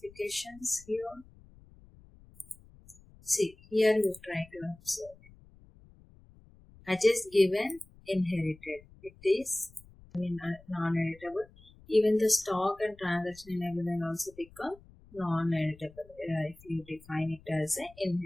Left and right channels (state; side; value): noise; left; rumble, 24 dB below the sound